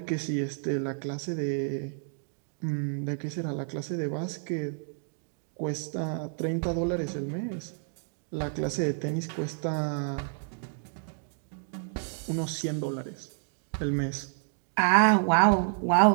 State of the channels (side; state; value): left; silent; 58 dB below the other